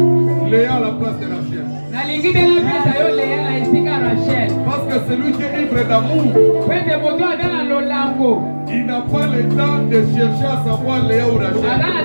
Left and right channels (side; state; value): both; inverted; correlation -1.00